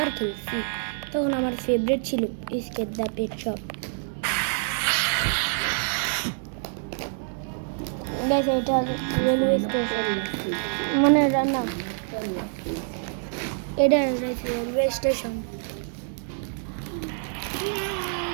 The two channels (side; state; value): left; silent; digital silence